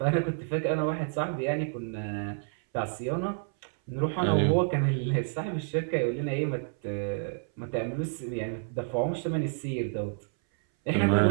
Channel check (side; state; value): left; silent; 58 dB below the other